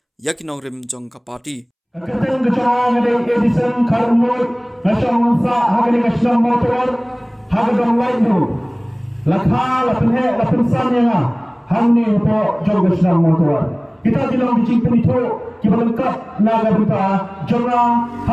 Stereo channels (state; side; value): identical; both; correlation 1.00